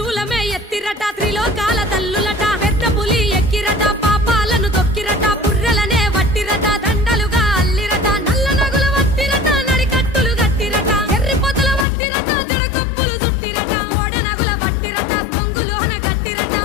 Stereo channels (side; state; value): right; drops out; at 11.9 s